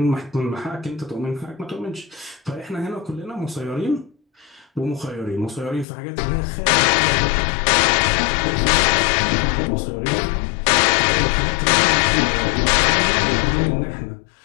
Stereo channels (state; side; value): drops out; right; at 5.9 s